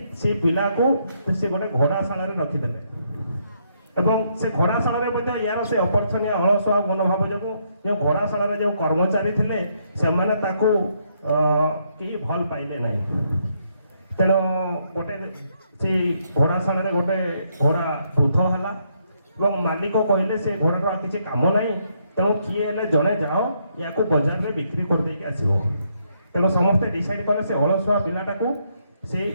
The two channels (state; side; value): inverted; both; correlation -0.74